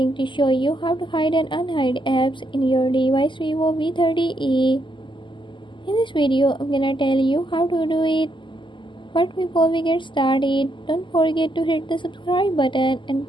to show you how to hide and unhide apps in your device Vivo V30e. In this video I'm gonna tell you how to do it. But before we get started, don't forget to hit the subscribe button and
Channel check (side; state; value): right; late; 0.24 ms